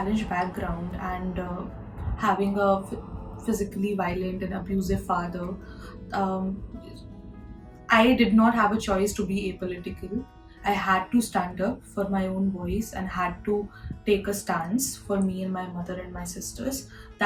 background and having a physically violent and abusive father, um, I did not have a choice to be apolitical. I had to stand up for my own voice and had to take a stance for me and my mother and my sisters.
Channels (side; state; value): both; identical; correlation 1.00